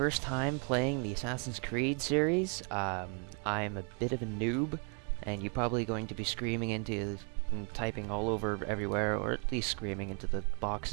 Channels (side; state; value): left; quieter; 38.0 dB